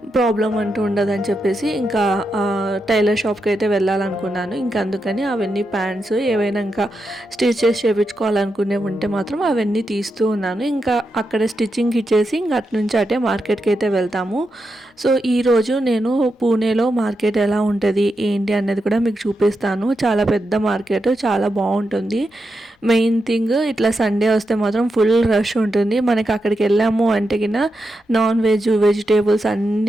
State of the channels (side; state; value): both; normal; correlation 0.86